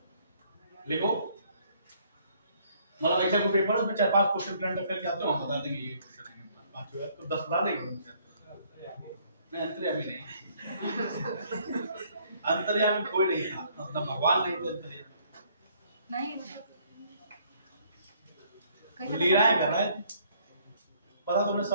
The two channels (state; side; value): inverted; both; correlation -0.64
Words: लिखो मतलब ऐसा कोई पेपर है उसमें 4-5 क्वेश्चन करंट अफेयर के आते हो, हम बता देंगे ये क्वेश्चन है, 5 होगा तो 10 बता देंगे। नहीं अंतर्यामी नहीं, अंतर्यामी कोई नहीं था, मतलब भगवान नहीं थे अंतर्यामी, नहीं लीलाएं कर रहे थे, पता तुम्हें